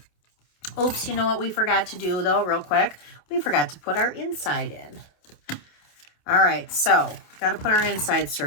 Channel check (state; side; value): late; right; 27 ms